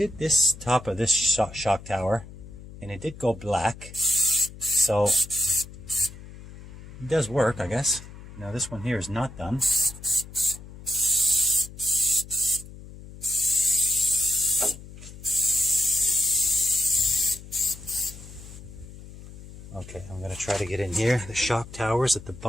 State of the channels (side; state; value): left; noise; hum, 16 dB below the sound